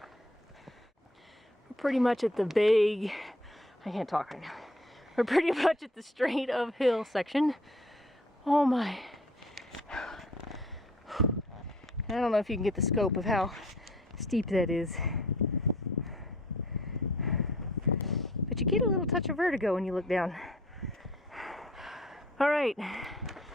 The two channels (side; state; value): both; normal; correlation 0.56